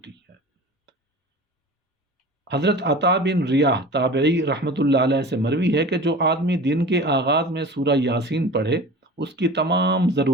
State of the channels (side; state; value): both; normal; correlation 0.37